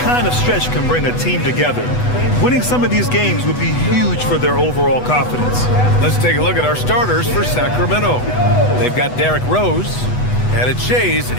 of stretch can bring a team together. Winning some of these games would be huge for their overall confidence. Let's take a look at our starters for Sacramento. They've got Derrick Rose, and it's Shays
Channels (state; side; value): late; right; 8.1 ms